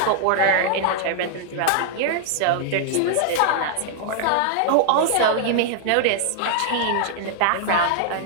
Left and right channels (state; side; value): different; both; correlation -0.01